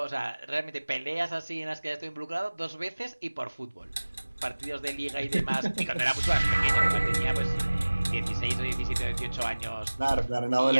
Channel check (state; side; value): inverted; both; correlation -1.00